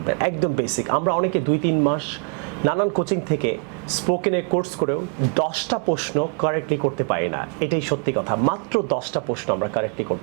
একদম বেসিক। আমরা অনেকে 2-3 মাস নানান কোচিং থেকে স্পোকেনের কোর্স করেও 10টা প্রশ্ন কারেক্টলি করতে পারি না। এটাই সত্যি কথা, মাত্র 10টা প্রশ্ন আমরা কারেক্টলি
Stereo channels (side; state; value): left; quieter; 37.0 dB